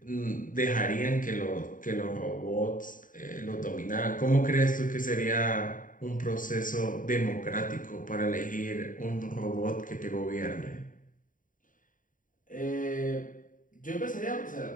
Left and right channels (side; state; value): right; late; 0.39 ms